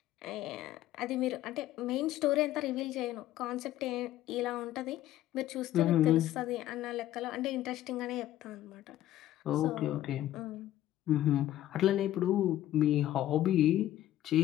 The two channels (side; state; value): right; quieter; 13.4 dB